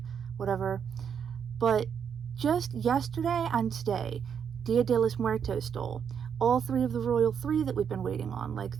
whatever. But just yesterday and today, Dia de los Muertos stole all three of the Royal Three that we've been waiting on, like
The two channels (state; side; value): quieter; left; 7.5 dB